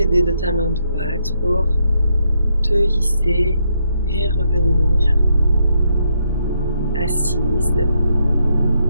de ta main droite pour te hisser et revenir assise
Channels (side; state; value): both; inverted; correlation -0.77